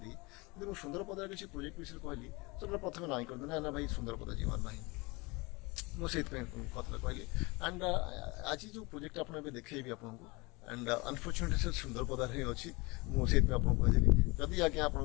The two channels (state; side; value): quieter; right; 25.6 dB